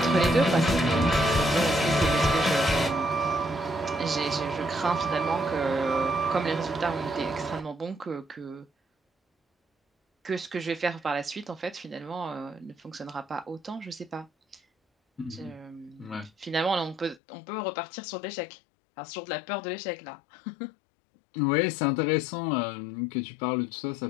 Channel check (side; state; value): right; drops out; at 17.2 s